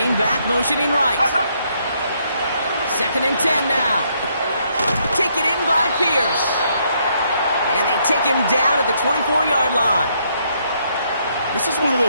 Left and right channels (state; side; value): inverted; both; correlation -0.72